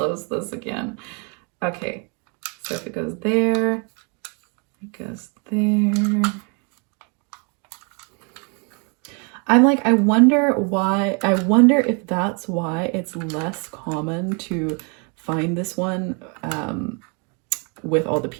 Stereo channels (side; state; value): left; quieter; 35.0 dB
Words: this again. Okay, so if it goes there, it goes there. I'm like, I wonder if that's why it's less common to find this one with all the